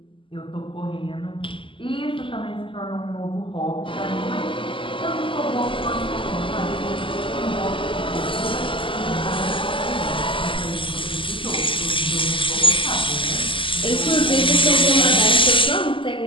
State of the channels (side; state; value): right; late; 0.25 ms